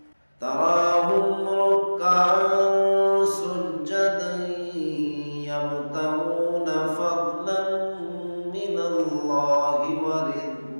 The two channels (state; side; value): inverted; both; correlation -1.00